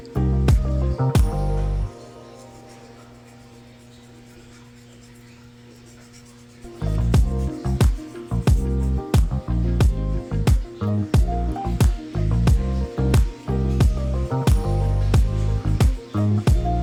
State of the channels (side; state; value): both; identical; correlation 1.00